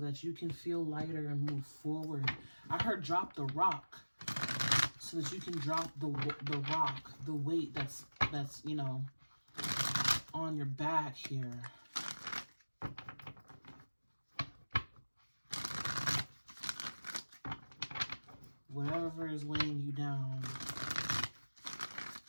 that you can feel lighter and move forward. I heard drop the rock, so that you can drop the rock, the weight that's you know, on your back here. Whatever is weighing you down,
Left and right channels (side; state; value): both; inverted; correlation -1.00